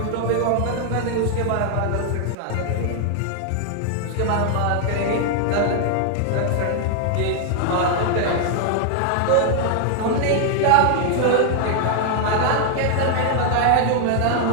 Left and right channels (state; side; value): different; both; correlation 0.00